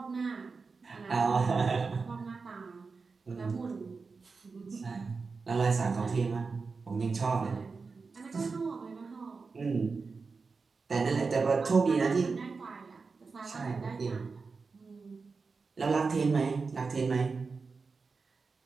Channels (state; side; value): quieter; left; 4.5 dB